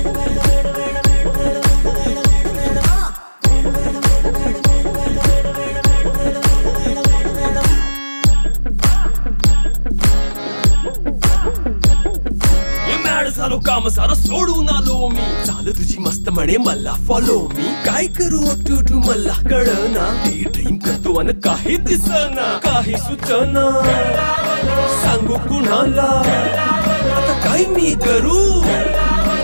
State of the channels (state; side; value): inverted; both; correlation -1.00